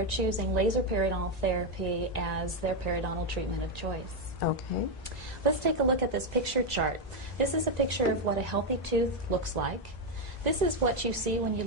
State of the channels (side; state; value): both; normal; correlation 0.05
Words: choosing laser periodontal therapy as their periodontal treatment of choice. Okay. Let's take a look at this picture chart. This is a picture of what a healthy tooth looks like. This is what you see when you